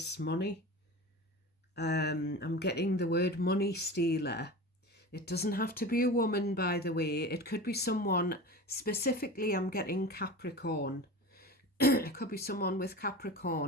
money. I'm getting the word money stealer. It doesn't have to be a woman, by the way. It could be someone, specifically I'm getting Capricorn. It could be someone with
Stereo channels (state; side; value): normal; both; correlation 0.32